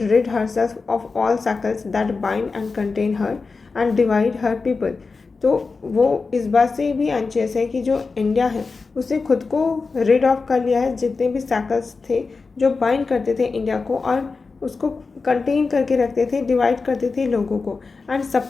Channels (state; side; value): quieter; right; 4.3 dB